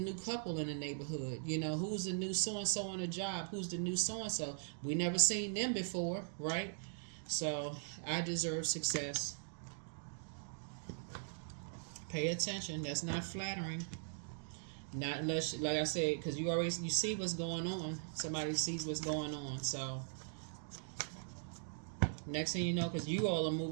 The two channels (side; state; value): left; silent; digital silence